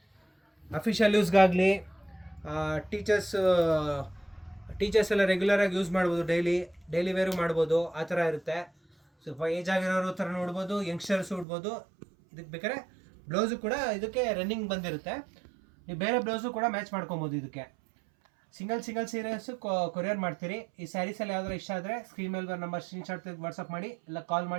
ಅಫಿಷಿಯಲ್ ಯೂಸ್ಗಾಗಲಿ, ಟೀಚರ್ಸ್ ಎಲ್ಲ ರೆಗ್ಯುಲರಾಗಿ ಯೂಸ್ ಮಾಡ್ಬೋದು, ಡೈಲಿ ವೇರು ಮಾಡ್ಬೋದು, ಆ ಥರ ಇರುತ್ತೆ. ಸ್ವಲ್ಪ ಏಜ್ ಆಗಿರೋರು ಥರ ನೋಡ್ಬೋದು, ಯಂಗ್ಸ್ಟರ್ಸ್ ಉಡ್ಬೋದು. ಇದಕ್ಕೆ ಬೇಕಾದ್ರೆ ಬ್ಲೌಸು ಕೂಡ ಇದಕ್ಕೆ ರನ್ನಿಂಗ್ ಬಂದಿರುತ್ತೆ. ನೀವು ಬೇರೆ ಬ್ಲೌಸು ಕೂಡ ಮ್ಯಾಚ್ ಮಾಡ್ಕೊಬೋದು. ಇದಕ್ಕೆ ಸಿಂಗಲ್ ಸೀರೆಸು ಕೊರಿಯರ್ ಮಾಡ್ತೀರಿ. ಈ ಸ್ಯಾರೀಸಲ್ಲಿ ಯಾವ್ದಾರು ಇಷ್ಟ ಆದರೆ ಸ್ಕ್ರೀನ್ ಮೇಲೆ ಬರೋ ನಂಬರ್ ಸ್ಕ್ರೀನ್ಶಾಟ್ ತೆಗೆದು ವಾಟ್ಸಪ್ ಮಾಡಿ, ಇಲ್ಲ ಕಾಲ್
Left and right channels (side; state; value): left; drops out; at 11.5 s